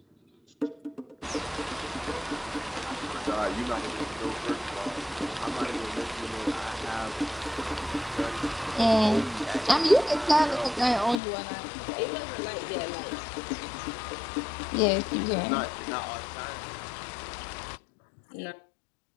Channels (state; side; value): drops out; right; at 11.2 s